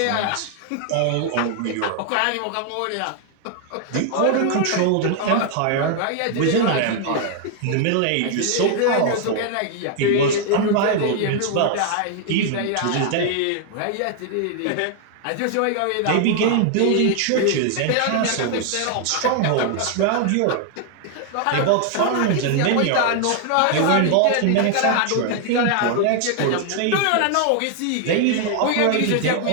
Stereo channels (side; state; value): both; different; correlation 0.00